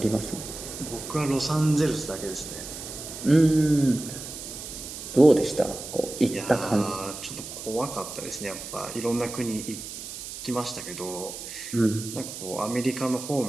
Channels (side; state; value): right; noise; hiss, 10 dB below the sound